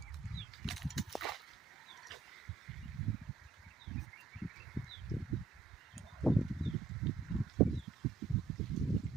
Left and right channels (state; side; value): quieter; left; 4.7 dB